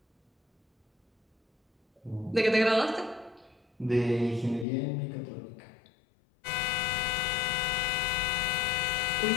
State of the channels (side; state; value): right; drops out; at 4.7 s